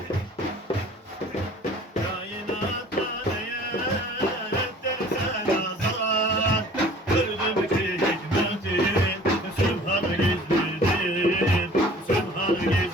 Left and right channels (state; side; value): normal; both; correlation 0.49